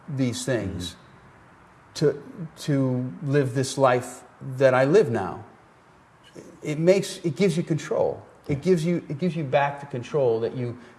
these things to live this life that I live now, it gives you control. It gives you back the control that you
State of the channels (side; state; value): both; identical; correlation 1.00